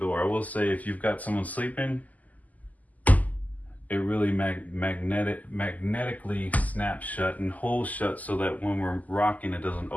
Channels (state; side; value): late; right; 0.078 ms